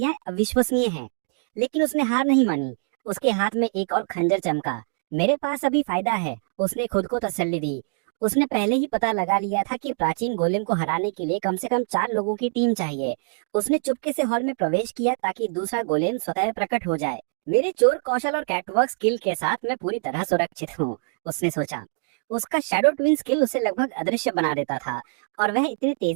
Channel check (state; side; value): silent; left; 61 dB below the other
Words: अविश्वसनीय हैं। लेकिन उसने हार नहीं मानी। उसके हाथ में एक और खंजर चमका। मेरे पास अभी फायदा है, उसने खुद को तसल्ली दी। उसने पहले ही पता लगा लिया था कि प्राचीन गोलेम को हराने के लिए कम से कम 4 लोगों की टीम चाहिए। उसने चुपके से हॉल में प्रवेश किया ताकि दूसरा गोलेम स्वतः प्रकट हो जाए। मेरे चोर कौशल और कैटवॉक स्किल के साथ मैं पूरी तरह सुरक्षित हूँ, उसने सोचा। उसका शैडो ट्विन स्किल उसे लगभग अदृश्य बना देता था और वह इतनी